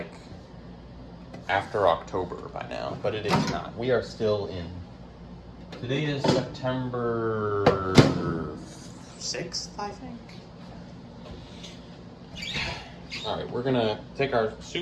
after October by now, but it is not. We are still in. Today is September 6th, I think. All right, we're gonna take our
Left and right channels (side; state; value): both; identical; correlation 1.00